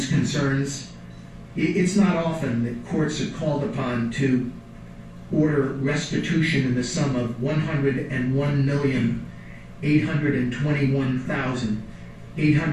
concerns It's not often that courts are called upon to order restitution in the sum of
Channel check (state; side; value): identical; both; correlation 1.00